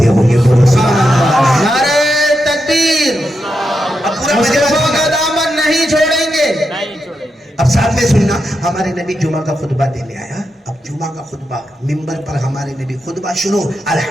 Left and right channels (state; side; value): normal; both; correlation 0.86